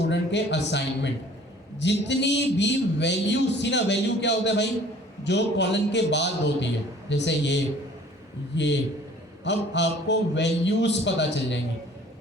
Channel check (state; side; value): normal; both; correlation 0.51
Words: के असाइनमेंट, जितनी भी वैल्यूज थी ना। वैल्यू क्या होता है भाई? जो कॉलन के बाद होती है, जैसे ये। अब आपको वैल्यूज पता चल जाएंगी।